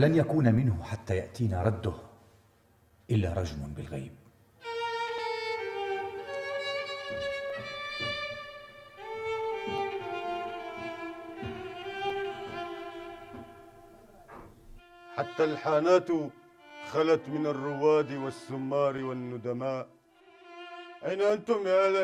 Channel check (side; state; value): both; identical; correlation 1.00